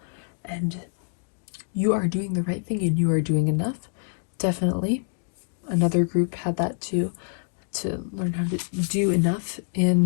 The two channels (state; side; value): silent; right; 61 dB below the other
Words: And you are doing the right thing and you are doing enough. Definitely. Another group had that too. To learn how to do enough